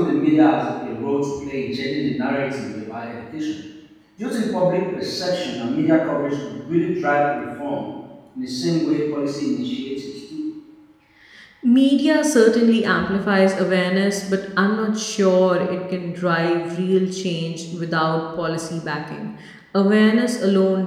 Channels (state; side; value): identical; both; correlation 1.00